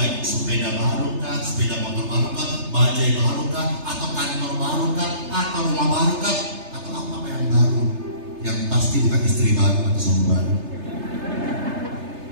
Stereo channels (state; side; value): late; left; 3.3 ms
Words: sepeda baru kah, sepeda motor baru kah, bajai baru kah, atau kantor baru kah, atau rumah baru kah, atau apa yang baru, yang pasti bukan istri baru atau suami baru.